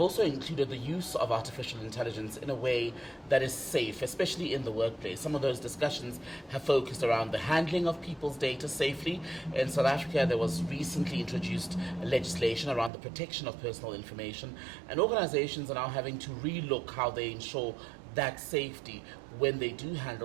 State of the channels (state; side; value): drops out; left; at 12.9 s